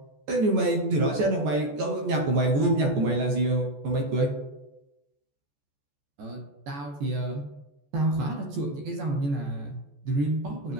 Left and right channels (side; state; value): left; late; 14 ms